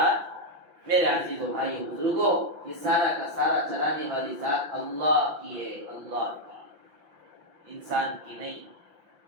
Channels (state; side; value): late; left; 5.8 ms